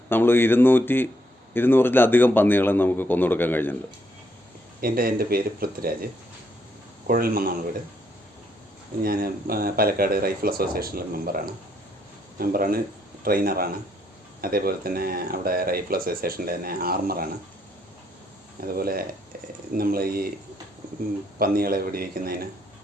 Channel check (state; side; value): normal; both; correlation 0.73